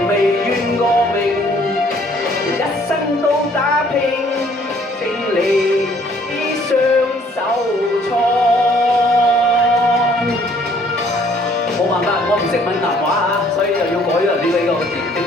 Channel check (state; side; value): normal; both; correlation 0.61